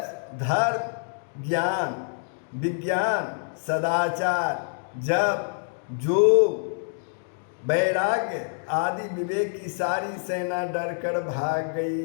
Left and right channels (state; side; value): silent; right; digital silence